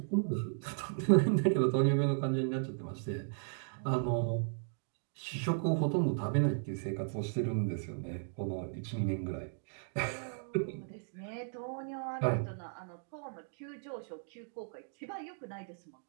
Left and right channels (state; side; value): silent; left; digital silence